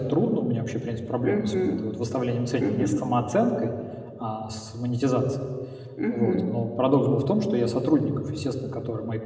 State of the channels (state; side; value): identical; both; correlation 1.00